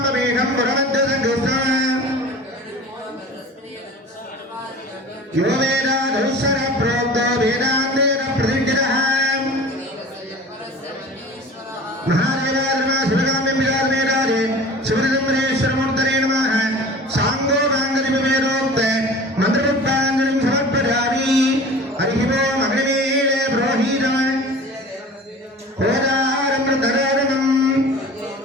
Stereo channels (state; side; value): normal; both; correlation 0.40